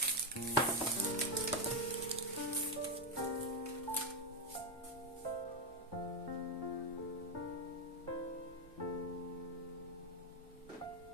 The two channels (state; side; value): normal; both; correlation 0.05